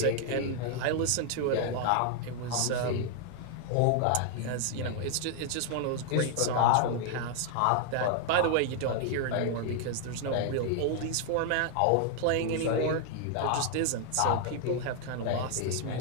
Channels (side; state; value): both; different; correlation 0.00